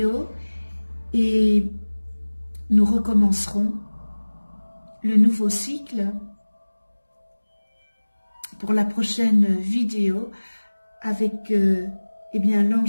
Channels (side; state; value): both; inverted; correlation -1.00